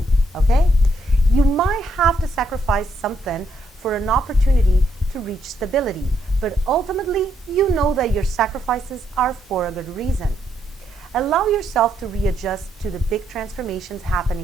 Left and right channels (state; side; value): normal; both; correlation 0.75